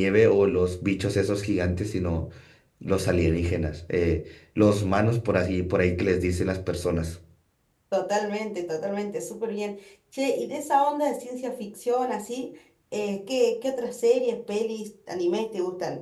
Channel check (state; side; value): identical; both; correlation 1.00